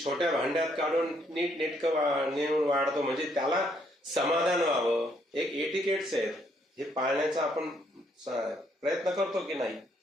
छोट्या भांड्यात काढून नीट नेटकं नेऊन वाढतो. म्हणजे त्याला समाधान व्हावं. एक एटिकेट्स आहेत, हे पाळण्याचा आपण प्रयत्न करतो की नाही.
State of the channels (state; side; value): normal; both; correlation 0.71